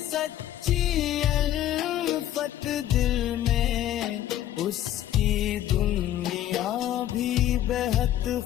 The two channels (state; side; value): quieter; right; 12.2 dB